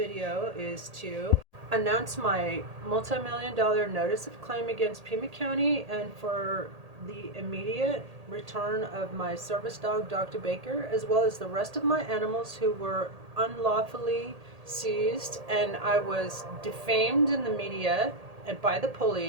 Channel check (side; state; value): left; late; 1.8 ms